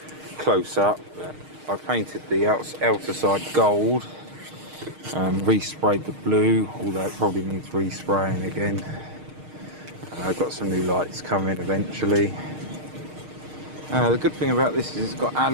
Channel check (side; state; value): left; late; 6.5 ms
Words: close-up, but I painted the outer side gold and resprayed the blue, although it probably needs respraying again. I've got some new lights coming eventually. The good thing about this is it's got